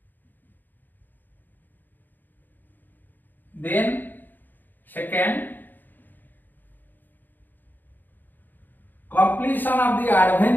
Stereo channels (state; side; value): late; right; 0.088 ms